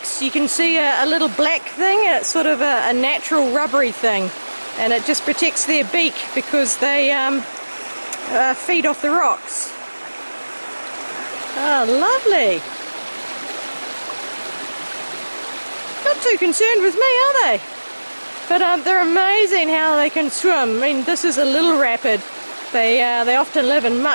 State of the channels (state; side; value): inverted; both; correlation -1.00